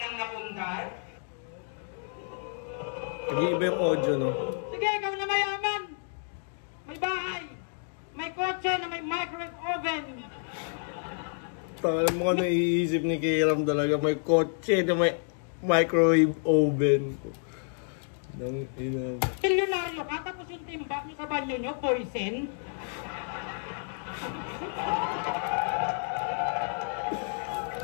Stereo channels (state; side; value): silent; right; 58 dB below the other